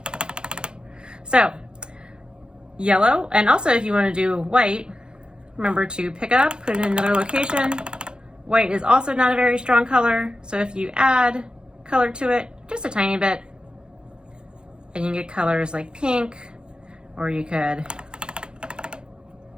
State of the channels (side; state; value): left; late; 0.049 ms